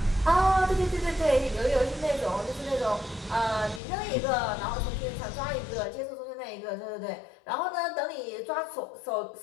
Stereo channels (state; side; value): drops out; right; at 3.8 s